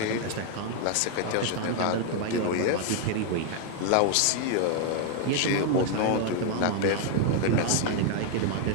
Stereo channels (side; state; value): both; different; correlation 0.00